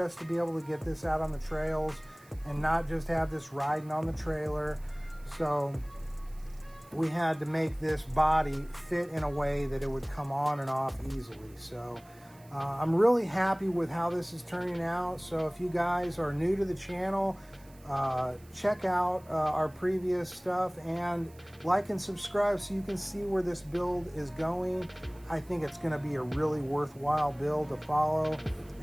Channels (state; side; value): noise; right; hiss, 27 dB below the sound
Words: to be able to get this out on the trails and not just have this riding on the trailer. So we had to make this body fit in a way that it would come on and off easily. So I'm really happy with how this is turning out. So if you guys are new to the channel, check out our previous stuff and like and subscribe so you can see where this build is going. I think it's going to be a really worthwhile build to follow.